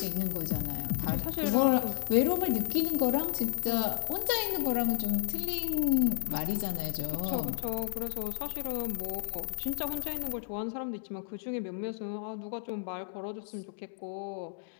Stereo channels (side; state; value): right; silent; digital silence